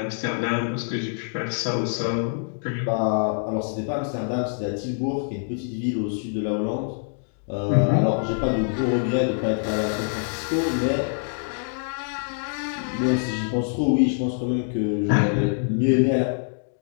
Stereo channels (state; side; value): silent; right; digital silence